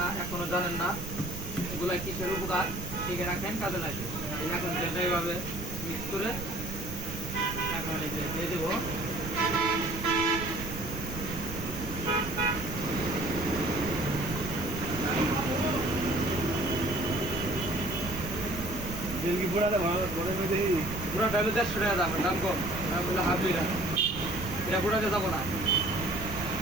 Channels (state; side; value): noise; right; rumble, 8 dB below the sound